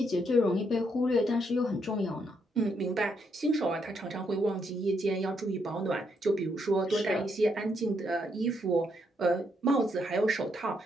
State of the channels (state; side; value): normal; both; correlation 0.76